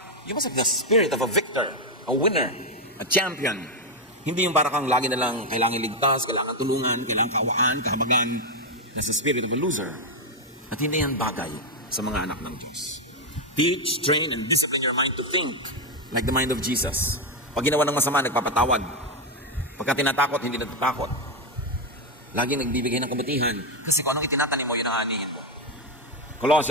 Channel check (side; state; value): both; normal; correlation 0.04